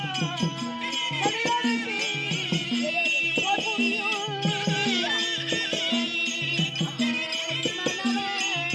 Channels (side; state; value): both; identical; correlation 1.00